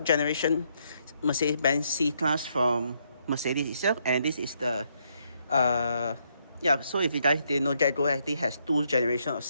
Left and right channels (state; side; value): inverted; both; correlation -0.74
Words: generation Mercedes-Benz C-Class from Mercedes itself, and this is the so if you guys didn't know, GetGo actually has 2 generations of